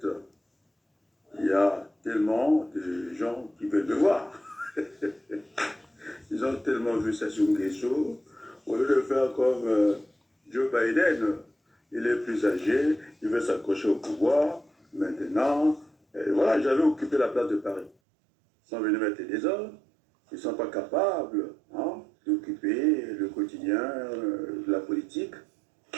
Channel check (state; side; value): drops out; left; at 17.9 s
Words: il y a tellement de gens qui veulent me voir. Ils ont tellement vu Sassou Nguesso, au lieu de faire comme Joe Biden, il est plus âgé, il veut s'accrocher au pouvoir. Maintenant, voilà, j'avais occupé la place de Paris. Ils sont venus mettre des ordres, ils ne sont pas capables d'occuper le quotidien de la politique.